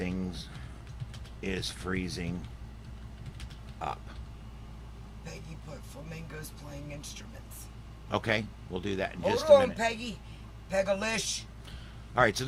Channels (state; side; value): identical; both; correlation 1.00